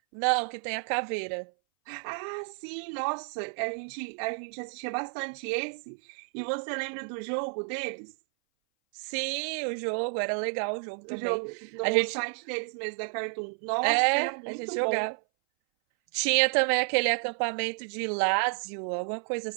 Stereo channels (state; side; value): silent; left; 57 dB below the other